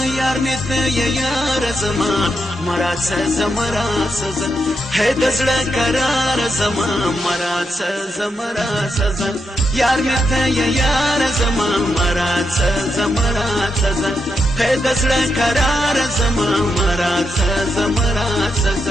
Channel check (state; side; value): normal; both; correlation 0.83